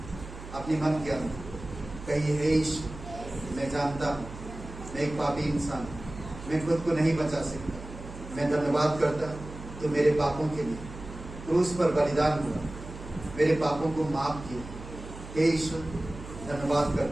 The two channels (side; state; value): right; noise; hum, 13 dB below the sound